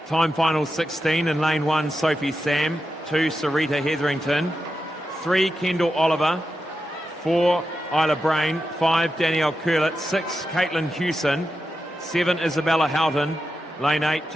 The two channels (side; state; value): both; normal; correlation 0.89